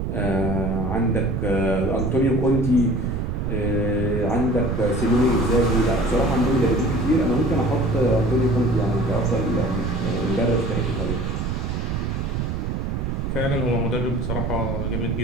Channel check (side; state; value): right; noise; rumble, 2 dB below the sound